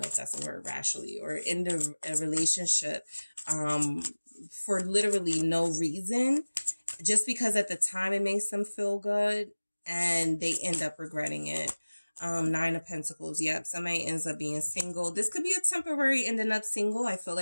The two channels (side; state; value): both; inverted; correlation -1.00